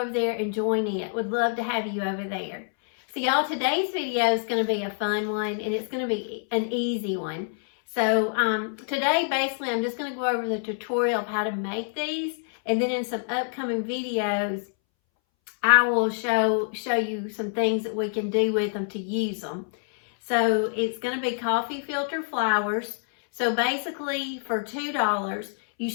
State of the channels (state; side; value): silent; right; 61 dB below the other